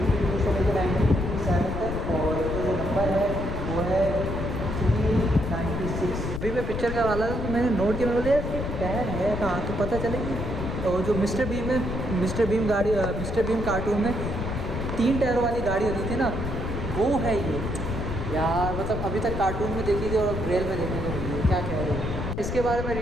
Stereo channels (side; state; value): left; noise; rumble, 4 dB below the sound